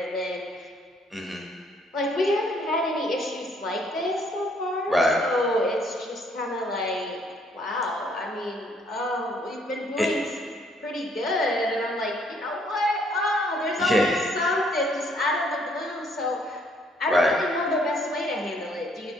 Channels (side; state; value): both; normal; correlation 0.65